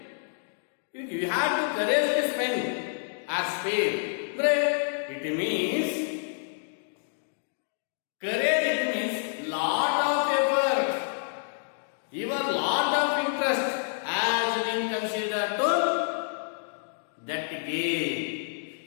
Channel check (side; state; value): right; silent; digital silence